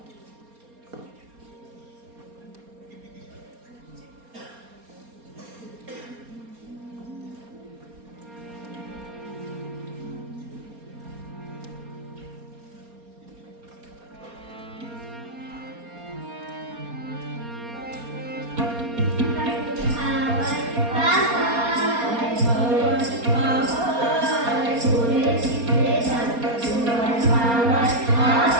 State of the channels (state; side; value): late; left; 4.3 ms